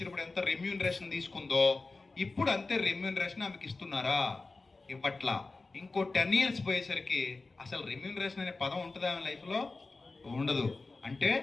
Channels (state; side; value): quieter; right; 3.6 dB